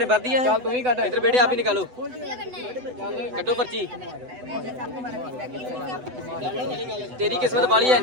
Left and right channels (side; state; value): left; late; 8.0 ms